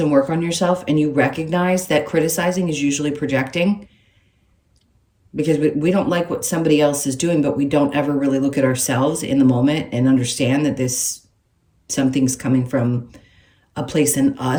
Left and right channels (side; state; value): both; identical; correlation 1.00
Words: work on yourself and you recognize that criticizing is usually projecting, because we don't like what somebody else is doing, but we don't ever really look at ourselves in the moment and understand that something's coming from a place in